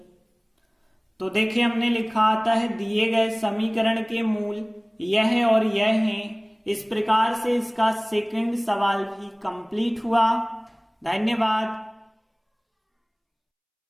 तो देखिए हमने लिखा आता है दिए गए समीकरण के मूल यह और यह हैं। इस प्रकार से इसका सेकंड सवाल भी कंप्लीट हुआ। धन्यवाद।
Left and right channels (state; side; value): identical; both; correlation 1.00